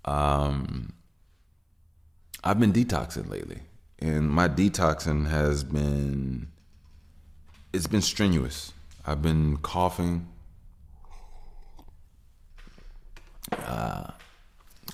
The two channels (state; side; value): identical; both; correlation 1.00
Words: I've been detoxing lately, and my detoxing it's been strenuous. I've been coughing up